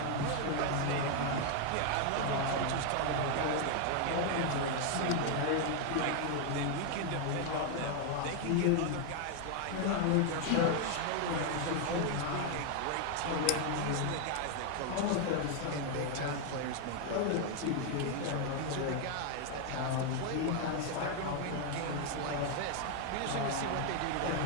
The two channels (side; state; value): both; different; correlation 0.00